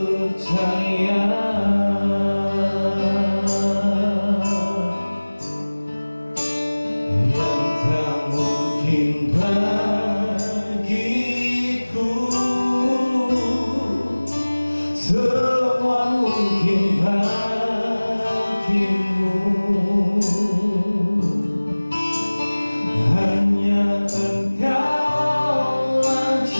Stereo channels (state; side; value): inverted; both; correlation -1.00